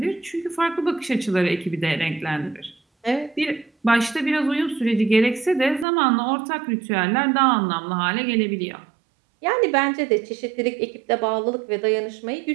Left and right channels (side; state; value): left; drops out; at 5.9 s